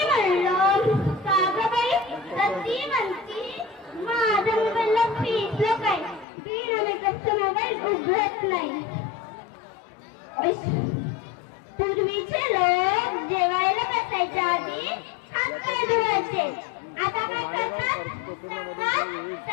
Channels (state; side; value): drops out; right; at 6.2 s